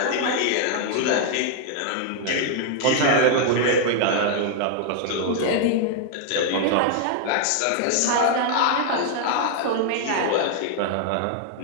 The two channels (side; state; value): both; different; correlation 0.00